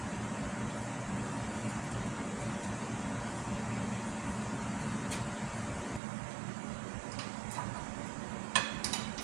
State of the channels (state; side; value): drops out; left; at 6.0 s